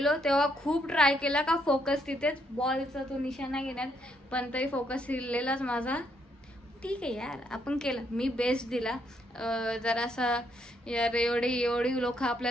तेव्हा खूप ट्राय केला का फोकस तिथेच बॉलचा तो निशाणा घेण्यात. पण तरी फोकस हिरलेलाच माझा. ठीक आहे यार आपण केलं. मी बेस्ट दिला. जरासा यार एवढी लोक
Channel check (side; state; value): both; normal; correlation 0.74